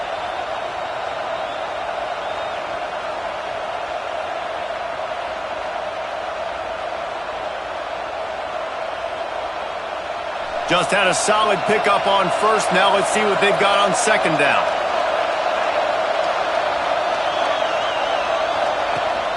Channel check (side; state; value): both; identical; correlation 1.00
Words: Just had a solid pickup on first. Now let's see what they've got on second down.